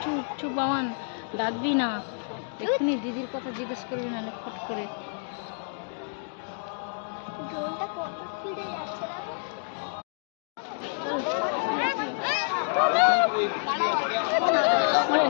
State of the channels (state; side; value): silent; right; digital silence